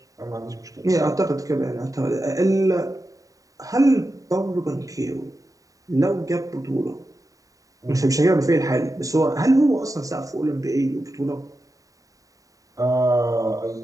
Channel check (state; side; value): late; left; 0.16 ms